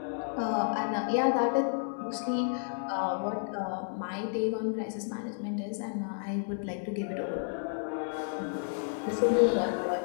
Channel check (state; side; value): silent; right; digital silence